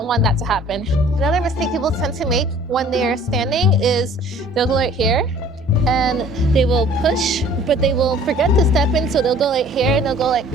want that to happen. Another mistake people tend to make when they are standing is they'll go right here, and they will push, but they will forget to step in, so they'll go like here, and they'll go like,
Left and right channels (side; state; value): both; normal; correlation 0.52